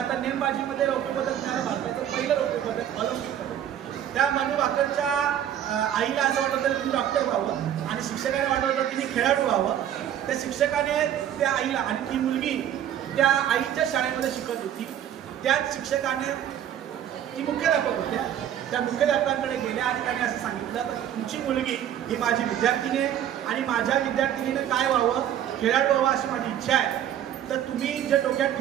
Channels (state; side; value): quieter; left; 10.5 dB